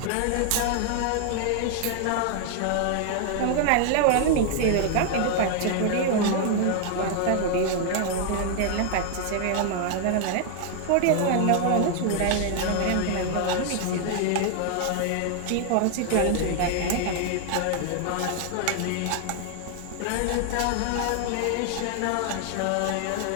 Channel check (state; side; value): different; both; correlation 0.00